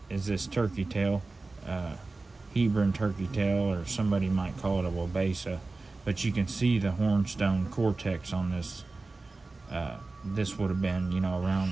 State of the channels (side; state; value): left; quieter; 3.5 dB